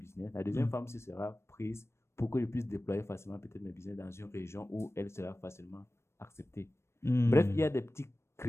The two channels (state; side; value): late; right; 0.13 ms